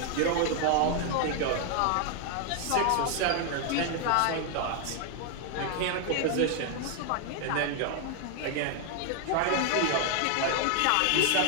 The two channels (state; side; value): different; both; correlation 0.00